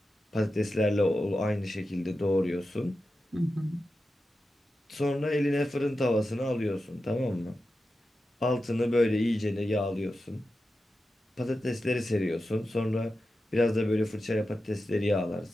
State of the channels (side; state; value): both; normal; correlation 0.91